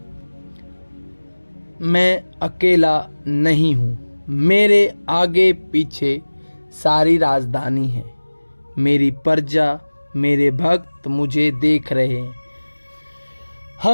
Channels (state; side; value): inverted; both; correlation -1.00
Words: मैं अकेला नहीं हूँ, मेरे आगे पीछे सारी राजधानी है। मेरी प्रजा, मेरे भक्त मुझे देख रहे हैं।